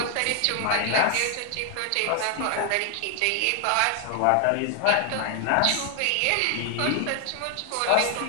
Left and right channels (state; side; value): different; both; correlation 0.00